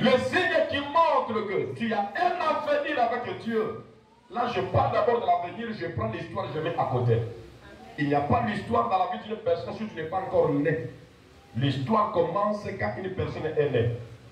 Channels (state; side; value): identical; both; correlation 1.00